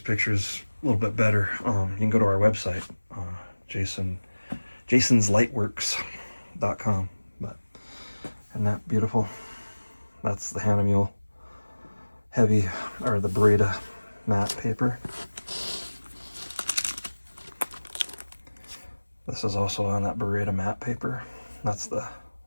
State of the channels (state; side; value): inverted; both; correlation -1.00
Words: pictures a little bit better, you can go to our website, jasonslightworks.com. But isn't that beautiful? That's the henna mule heavy, or the burrito matte paper. This is also on that burrito matte paper. That's the